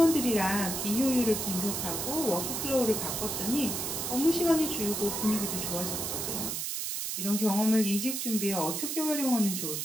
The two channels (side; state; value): right; noise; hiss, 2 dB below the sound